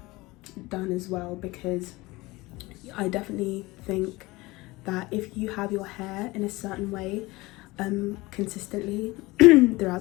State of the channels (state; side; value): quieter; right; 21.4 dB